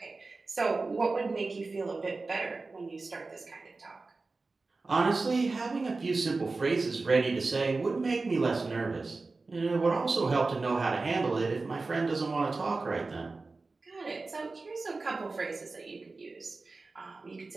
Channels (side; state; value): left; quieter; 3.7 dB